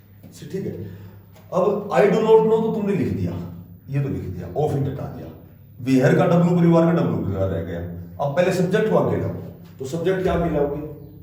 ठीक है। अब आई डू नॉट नो तो तुमने लिख दिया, ये तो लिख दिया, ऑफ इट हटा दिया, वेयर का डब्ल्यू परिवार का डब्ल्यू परिवार रह गया। अब पहले सब्जेक्ट को आगे लाओ, तो सब्जेक्ट क्या आगे लाओगे,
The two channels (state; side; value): identical; both; correlation 1.00